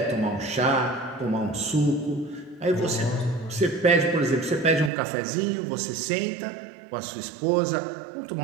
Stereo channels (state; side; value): drops out; left; at 4.9 s